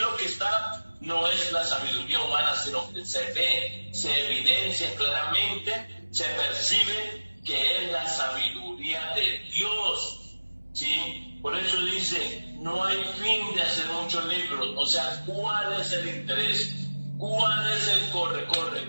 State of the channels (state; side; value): inverted; both; correlation -1.00